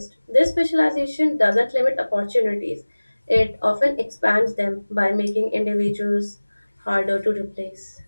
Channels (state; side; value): inverted; both; correlation -1.00